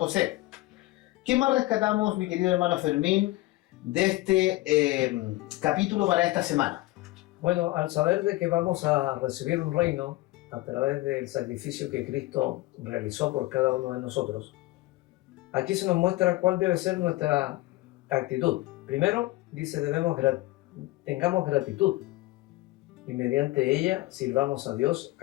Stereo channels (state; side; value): quieter; right; 19.2 dB